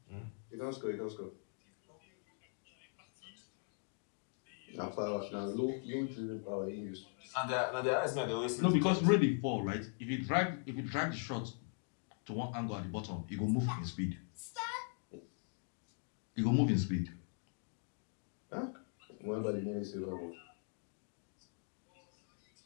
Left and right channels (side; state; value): right; silent; 51 dB below the other